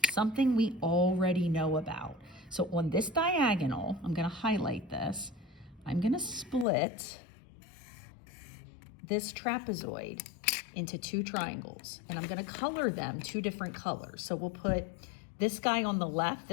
something we already know about. So on this diagonal, I'm going to highlight this. I'm going to split this trapezoid into 2 triangles, and I'm going to color them 2 different colors. So we'll put this guy on the left,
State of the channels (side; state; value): right; drops out; at 6.7 s